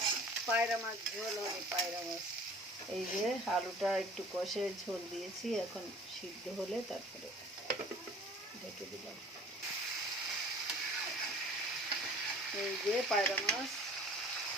পায়রা মাছ ঝোল হবে। পায়রা মাছ এই যে আলুটা একটু কষে ঝোল দিয়েছি, এখন সিদ্ধ হলে তারপরে ঢেকে দিলাম। এই যে পায়রা মাছ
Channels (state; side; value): normal; both; correlation 0.48